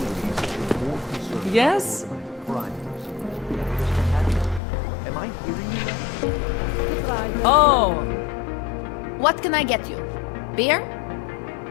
me that you're more concerned Yes? about crime. Am I hearing you right? Oh. What can I get you? Beer?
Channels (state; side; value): drops out; right; at 4.6 s